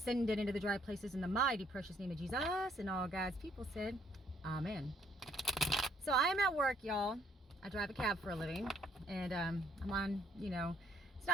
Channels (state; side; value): normal; both; correlation 0.66